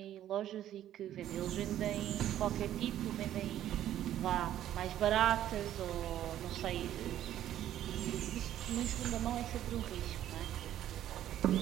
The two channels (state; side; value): quieter; left; 11.9 dB